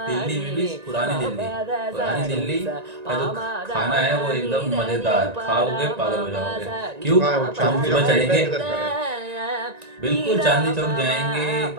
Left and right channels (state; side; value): late; left; 1.9 ms